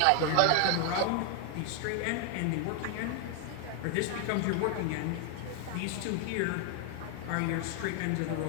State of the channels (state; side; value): different; both; correlation 0.00